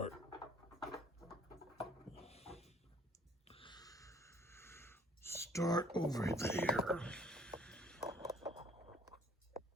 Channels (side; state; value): both; normal; correlation 0.57